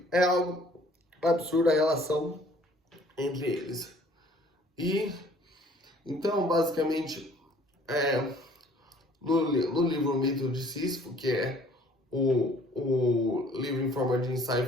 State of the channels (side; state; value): both; normal; correlation 0.56